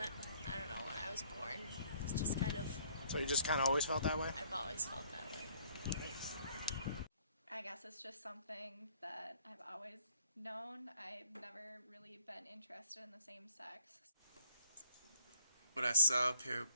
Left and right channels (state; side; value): inverted; both; correlation -0.61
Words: know, when I was born. It's just kind of... So you just kind of always felt that way? I've always felt that way. I guess it's just something that I've always known. I've never really been interested in the same sex. When I saw a pair of